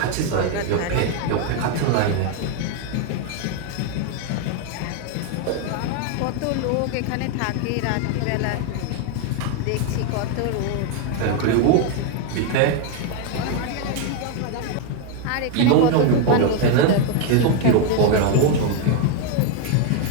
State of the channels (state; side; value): different; both; correlation 0.01